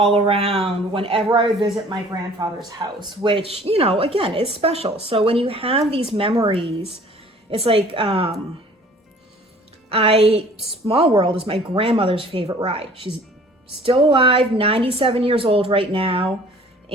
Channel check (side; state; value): both; normal; correlation 0.51